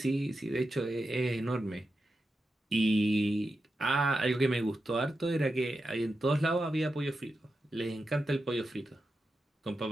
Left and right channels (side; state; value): both; normal; correlation 0.89